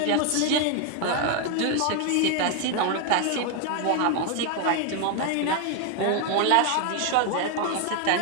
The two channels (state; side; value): different; both; correlation 0.01